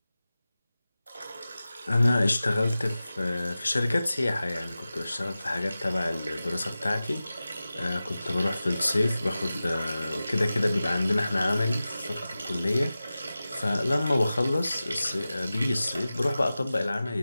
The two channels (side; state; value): both; inverted; correlation -0.95